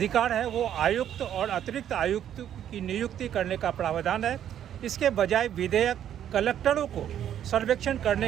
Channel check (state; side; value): quieter; left; 10.3 dB